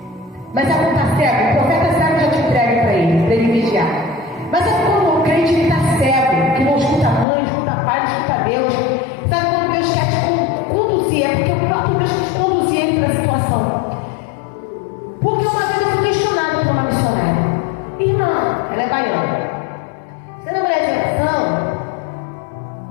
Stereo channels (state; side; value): drops out; right; at 7.2 s